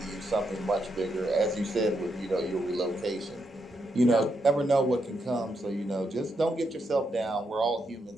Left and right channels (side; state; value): both; normal; correlation 0.81